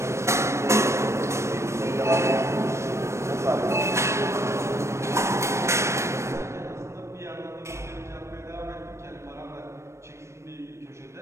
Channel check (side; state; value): left; late; 0.13 ms